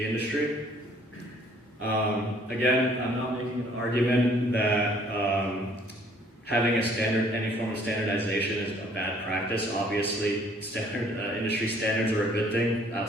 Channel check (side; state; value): both; normal; correlation 0.59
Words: industry. Again, I'm not making an argument that having any form of standardization is a bad practice. Obviously, industry standards are a good thing